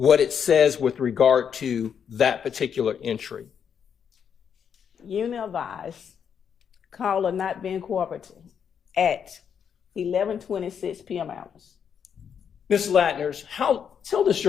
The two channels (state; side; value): quieter; right; 7.6 dB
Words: it says with regard to that particular entry. Unit advised, caller not being cooperative at 11:26 p.m. hours. Ms. Latners, tell this